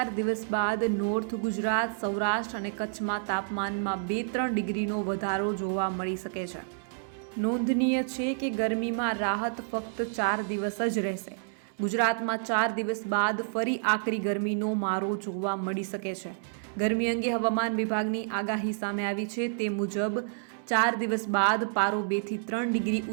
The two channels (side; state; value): left; silent; digital silence